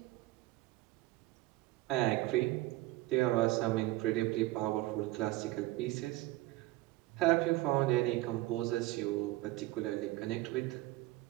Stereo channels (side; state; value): left; quieter; 18.2 dB